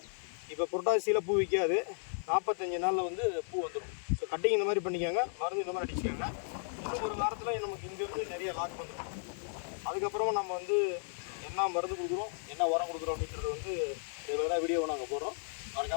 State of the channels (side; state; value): right; silent; digital silence